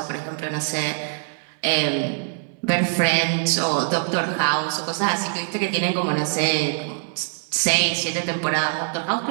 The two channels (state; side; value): silent; left; digital silence